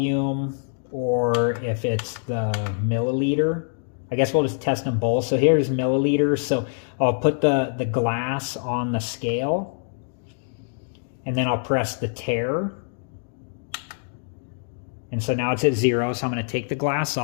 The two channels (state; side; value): silent; right; digital silence